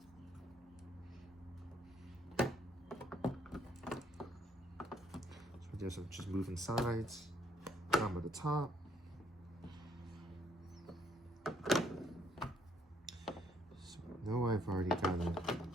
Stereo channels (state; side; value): normal; both; correlation 0.67